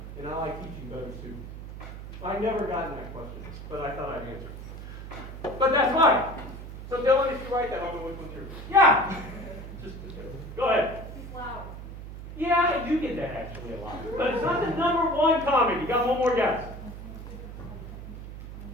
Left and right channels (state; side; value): noise; right; hum, 11 dB below the sound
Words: And I like teaching better students. I never gotten that question, but I thought I'd answer. But that's why. So Dylan, if you write that, I'll know which one's yours. Yeah. Go ahead. He's loud. Yeah, I do get that actually a lot. But it's not the number one comment. You got one more guess.